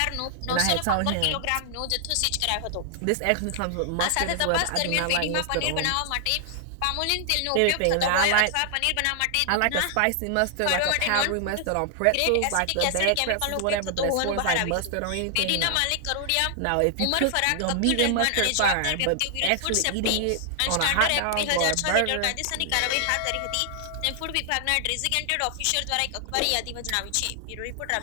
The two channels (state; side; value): different; both; correlation 0.00